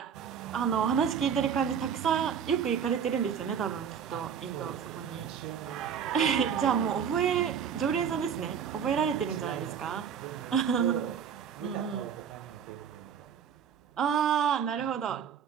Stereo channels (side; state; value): left; quieter; 7.6 dB